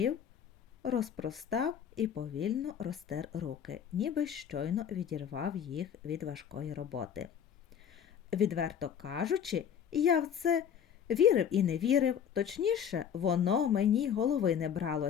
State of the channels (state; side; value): quieter; right; 8.3 dB